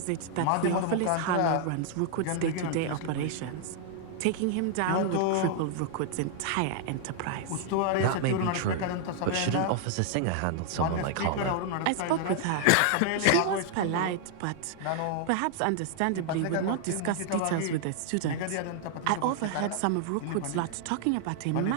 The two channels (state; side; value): different; both; correlation 0.00